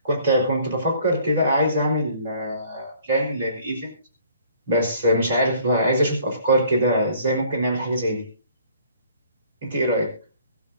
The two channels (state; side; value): inverted; both; correlation -0.57